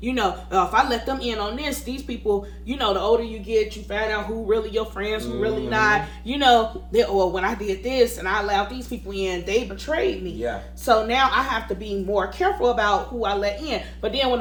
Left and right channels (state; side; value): identical; both; correlation 1.00